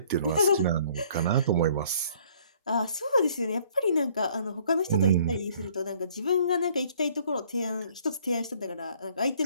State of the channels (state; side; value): inverted; both; correlation -0.60